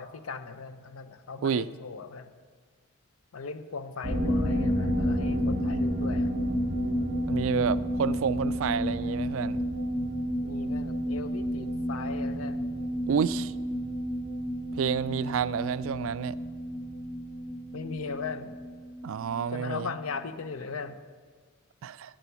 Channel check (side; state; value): both; normal; correlation 0.50